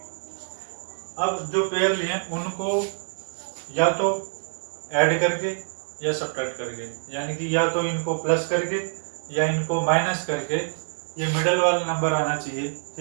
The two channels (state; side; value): silent; left; 61 dB below the other